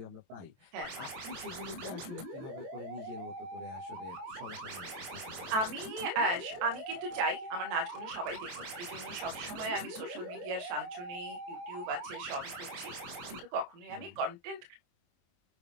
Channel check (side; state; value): left; late; 23 ms